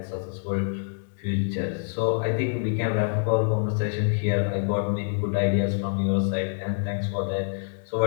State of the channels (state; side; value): silent; right; 61 dB below the other